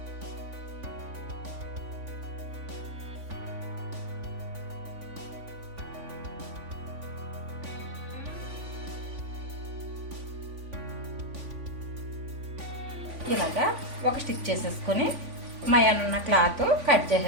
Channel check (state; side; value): late; left; 3.5 ms